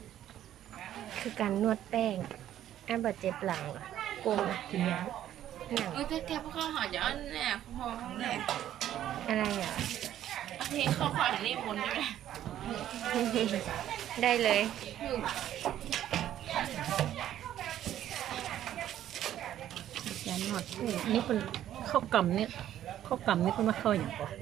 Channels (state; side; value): quieter; left; 11.7 dB